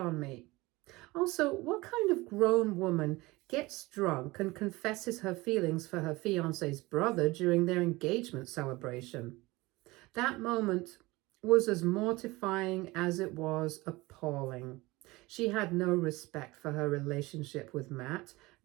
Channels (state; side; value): quieter; left; 21.4 dB